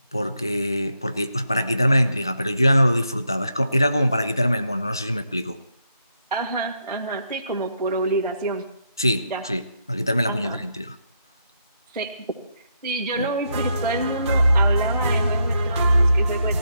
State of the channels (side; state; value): both; inverted; correlation -0.79